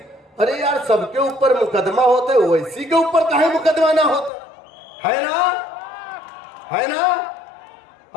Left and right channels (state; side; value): drops out; right; at 4.3 s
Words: अरे यार सबके ऊपर मुकदमा होता है, ओवैसी के ऊपर काहे मुकदमा ना होता है ना? है ना?